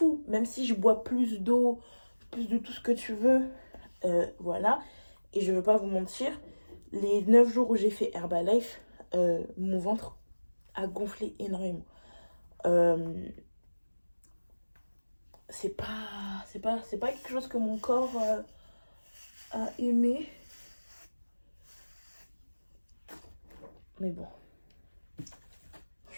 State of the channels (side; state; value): both; inverted; correlation -1.00